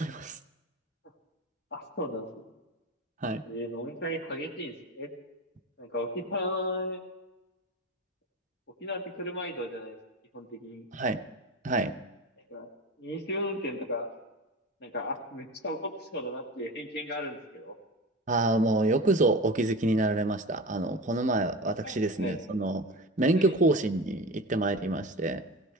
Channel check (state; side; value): normal; both; correlation 0.29